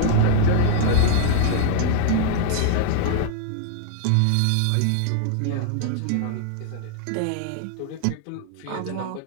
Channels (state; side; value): different; both; correlation 0.00